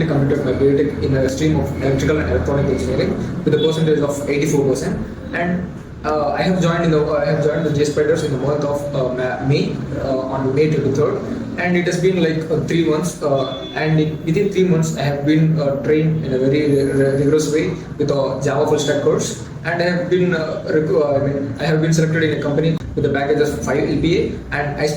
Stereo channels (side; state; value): both; identical; correlation 1.00